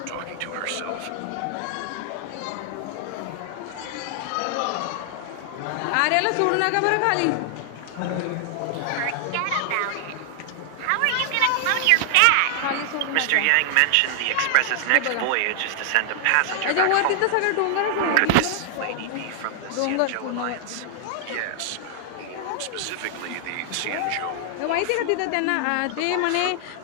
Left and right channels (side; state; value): both; different; correlation 0.00